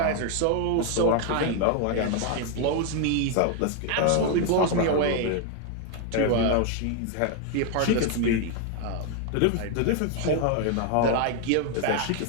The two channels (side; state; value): both; different; correlation 0.01